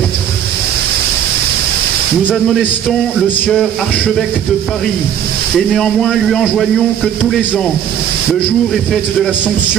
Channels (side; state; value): left; quieter; 9.5 dB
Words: Nous admonestons le sieur archevêque de Paris, et néanmoins lui enjoignons que tous les ans, le jour et fête de